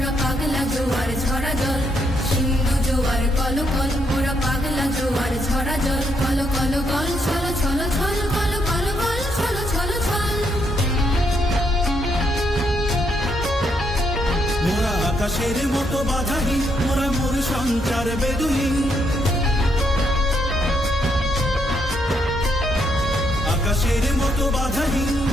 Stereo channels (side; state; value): both; normal; correlation 0.76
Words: পাগলা জোয়ার ঝরা জল। সিন্ধু জোয়ার কলকল, মোরা পাগলা জোয়ার ঝরা জল। কল কল গল ছল ছল ছল, কল কল গল ছল ছল ছল। মোরা আকাশের মতো বাধাহীন, মোরা মোর সঞ্চার বেদুহীন। আকাশের মতো বাধাহীন,